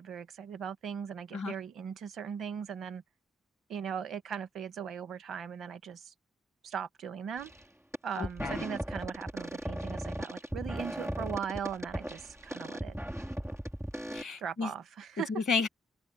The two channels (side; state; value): both; normal; correlation 0.71